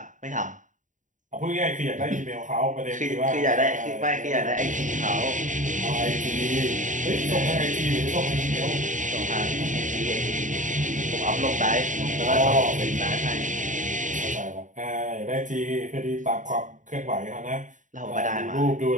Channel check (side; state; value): left; late; 0.37 ms